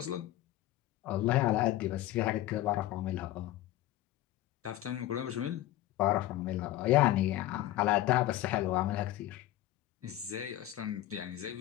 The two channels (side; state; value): right; quieter; 14.8 dB